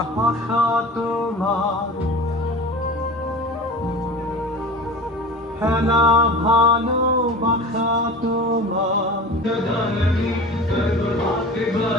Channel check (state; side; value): normal; both; correlation 0.36